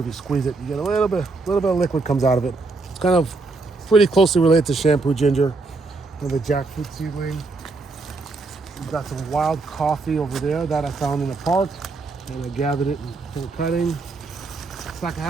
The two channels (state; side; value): quieter; left; 3.7 dB